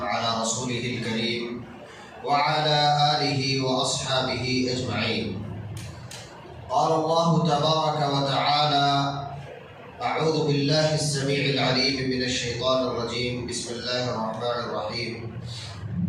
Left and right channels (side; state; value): both; identical; correlation 1.00